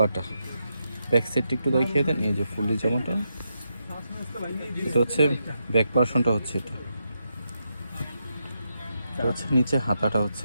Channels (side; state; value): both; inverted; correlation -0.83